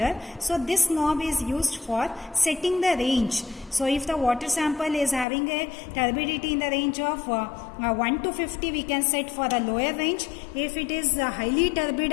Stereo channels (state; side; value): drops out; right; at 5.2 s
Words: So this knob is used for setting the range. So if the water sample is having a turbidity in the range of 1 to 50, we can set for the lower range. If it is highly turbid